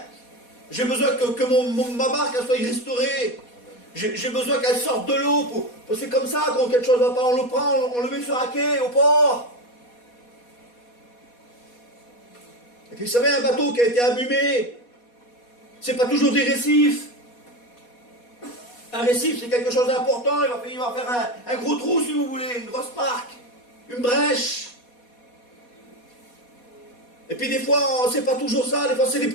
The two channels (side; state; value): right; late; 4.2 ms